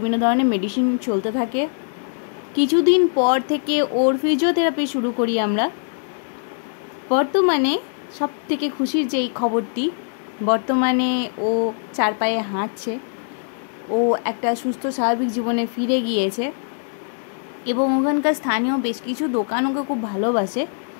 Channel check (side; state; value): right; silent; digital silence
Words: ধরনের মেডিসিন চলতে থাকে। কিছুদিন পর থেকে ওর ফিজিওথেরাপি শুরু করি আমরা। বর্তমানে সব থেকে খুশির যেই খবরটি, বর্তমানে ও 4 পায়ে হাঁটছে, ও একটা সুস্থ স্বাভাবিক জীবনে ফিরে গিয়েছে এবং ওখানকার স্থানীয় বেশ কিছু দোকান ওকে খুব ভালোবাসে।